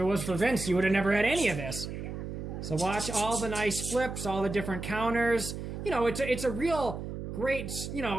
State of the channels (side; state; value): right; noise; hum, 7 dB below the sound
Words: was for Vince, you would have never had any of this. So watch all the nice flips, all the different counters. You know, it's a real... great,